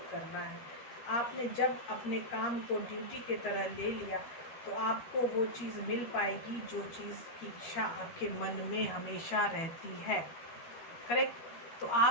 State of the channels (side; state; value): right; late; 12 ms